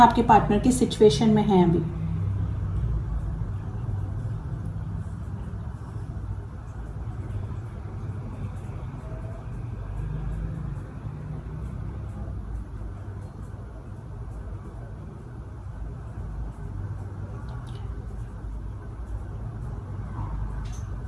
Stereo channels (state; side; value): identical; both; correlation 1.00